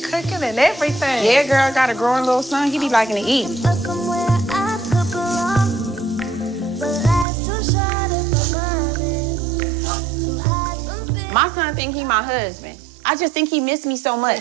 cooking and everything. Yeah, girl, got a growing little son. He be liking to eat. But somewhere I could belong. But life's too short if I'm honest. To hide from things. My son think he my husband. I just think he missed me so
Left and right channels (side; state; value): left; drops out; at 7.2 s